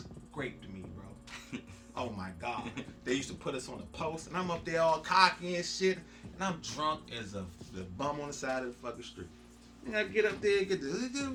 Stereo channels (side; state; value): both; identical; correlation 1.00